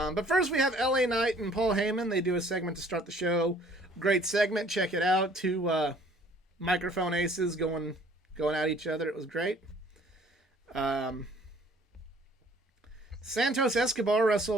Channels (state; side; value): normal; both; correlation 0.56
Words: first we have LA Knight and Paul Heyman. They do a segment to start the show. Great segment. Check it out. Two microphone aces going at each other. It was great. Santos Escobar